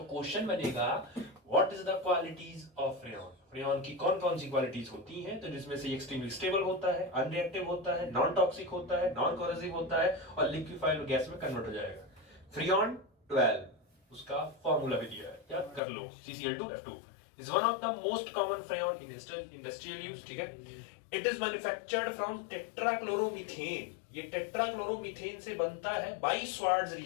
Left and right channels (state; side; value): drops out; right; at 15.8 s